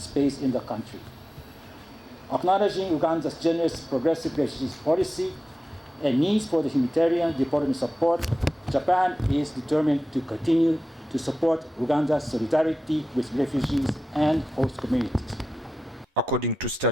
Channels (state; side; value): normal; both; correlation 0.94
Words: in the country. Acknowledging Uganda's generous progressive refugees policy and needs for the humanitarian development support, Japan is determined to continue to support Uganda's solidarity with refugees and host communities. According to